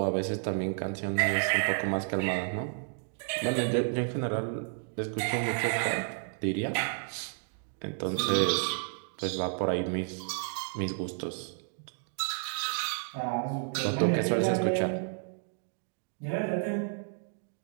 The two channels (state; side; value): silent; left; 57 dB below the other